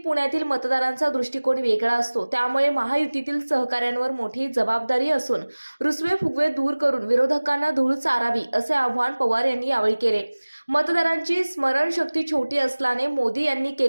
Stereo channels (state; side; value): inverted; both; correlation -1.00